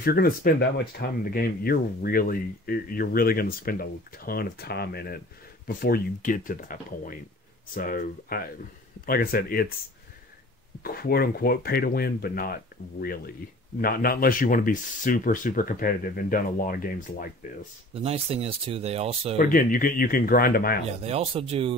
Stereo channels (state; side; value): normal; both; correlation 0.46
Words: you're going to spend that much time in the game, you're really going to spend a ton of time in it before you get to that point. So, like I said, it's quote unquote pay to win, but not really. Not unless you want to be super, super competitive and done a lot of games like this. The nice thing is too, they also. But again, you can grind them out. Yeah, they also